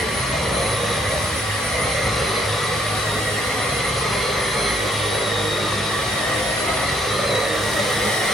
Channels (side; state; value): both; normal; correlation 0.68